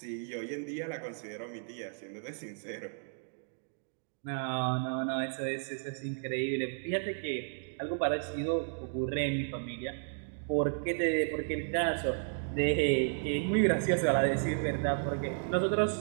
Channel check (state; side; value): silent; left; digital silence